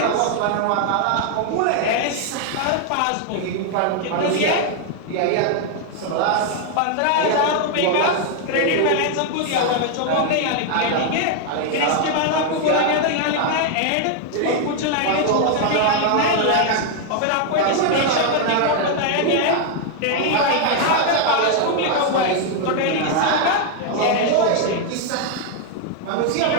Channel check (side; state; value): both; different; correlation 0.00